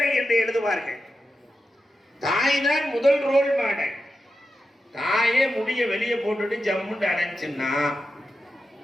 என்று எழுதுவார்கள். தாய் தான் முதல் ரோல் மாடல். தாயே முடிய வெளியே போட்டுட்டு ஜம்முண்டு அடைச்சுன்னா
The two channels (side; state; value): both; normal; correlation 0.90